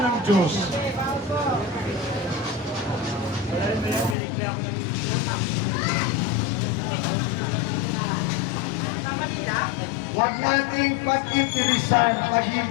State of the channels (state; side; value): drops out; right; at 4.2 s